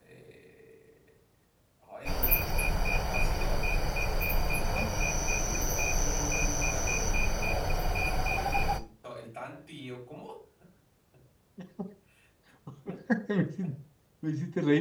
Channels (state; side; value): identical; both; correlation 1.00